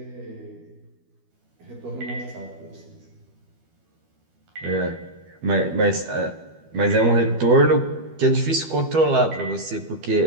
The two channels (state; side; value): late; left; 12 ms